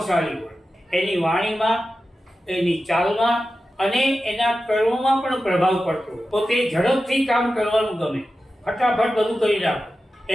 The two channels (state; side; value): normal; both; correlation 0.93